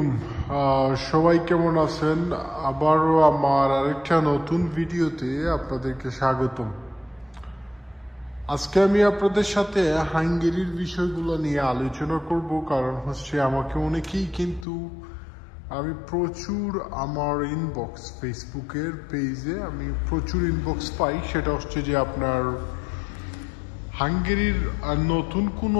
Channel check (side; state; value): right; drops out; at 14.7 s